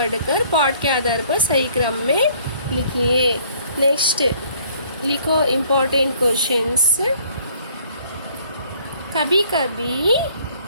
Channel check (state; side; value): inverted; both; correlation -0.60